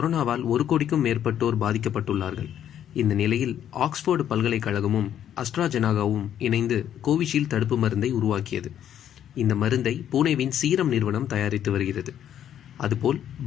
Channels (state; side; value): quieter; right; 10.2 dB